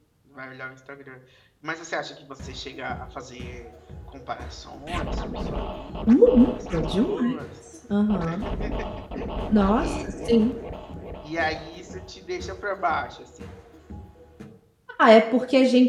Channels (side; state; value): both; identical; correlation 1.00